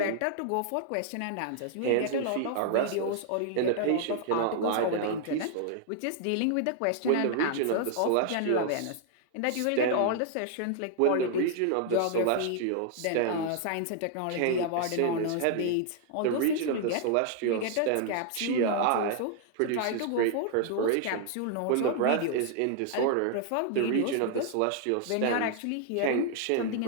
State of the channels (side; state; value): both; different; correlation 0.00